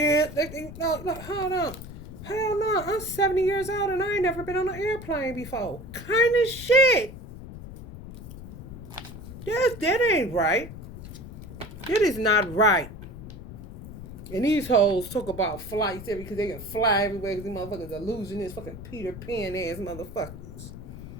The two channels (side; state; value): left; noise; rumble, 13 dB below the sound